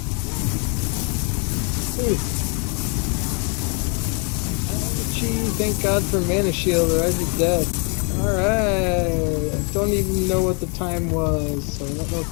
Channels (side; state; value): right; quieter; 36.2 dB